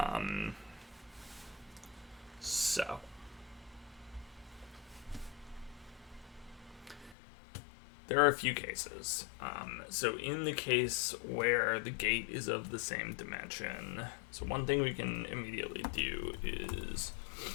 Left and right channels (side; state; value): right; drops out; at 7.2 s